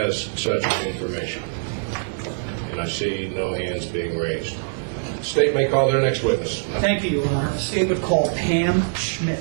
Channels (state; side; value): silent; left; digital silence